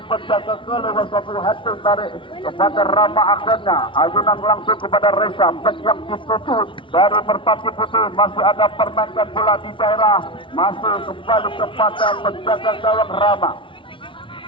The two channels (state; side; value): late; right; 0.25 ms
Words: penjaga ke lewat satu hati tarik kepada Rama akhirnya ayunan langsung kepada Reza yang ditutup dari Merpati Putih masih ada permainan bola di daerah masih kembali kepada penjaga gawang Rama.